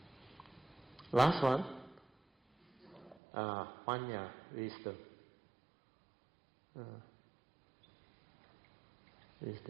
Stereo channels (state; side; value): drops out; left; at 3.2 s